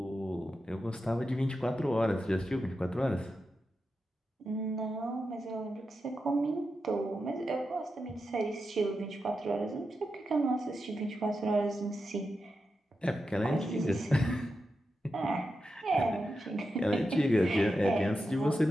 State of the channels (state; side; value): normal; both; correlation 0.89